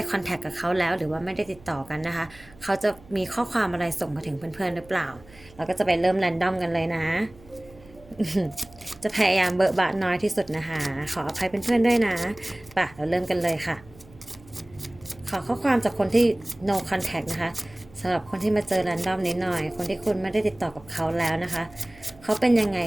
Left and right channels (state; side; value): noise; right; hum, 23 dB below the sound